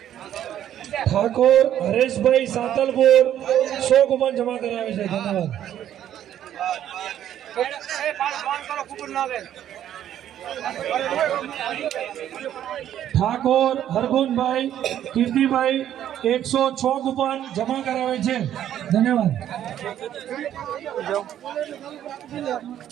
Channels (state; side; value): quieter; left; 11.0 dB